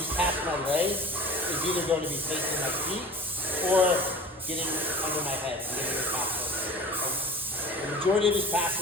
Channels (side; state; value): both; normal; correlation 0.40